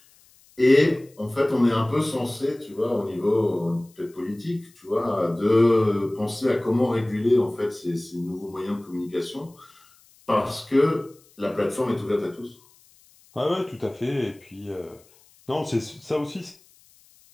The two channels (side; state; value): left; noise; hiss, 29 dB below the sound